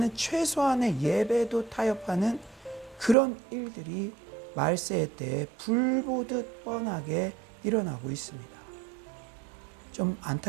최소한의 예배도 타협하는 그런 일들이 말세의 때에 불보듯 뻔하게 일어나고 있습니다. 좀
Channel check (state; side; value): drops out; left; at 3.2 s